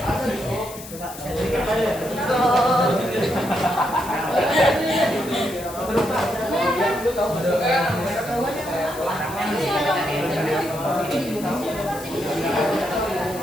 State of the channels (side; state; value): left; noise; hiss, 14 dB below the sound